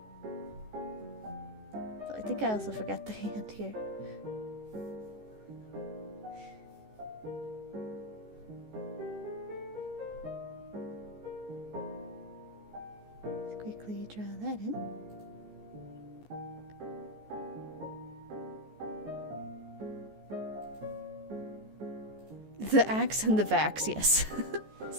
So I think I also forgot the hand here. Let's quickly draw that in. The axe and the vax, yes.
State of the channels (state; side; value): late; left; 14 ms